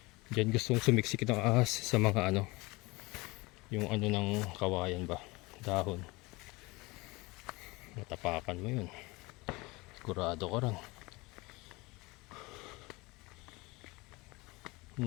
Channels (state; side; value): quieter; right; 23.7 dB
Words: Diyan gustong sumiksik ng ahas sa mga ano. Yung ano ng kawayan ba. Dahon. Matapakan mo yun. Sigurado ko rin.